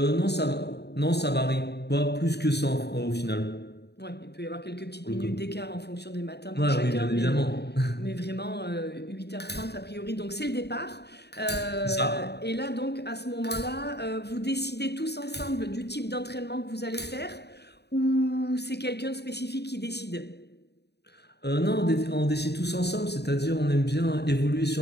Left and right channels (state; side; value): late; right; 0.48 ms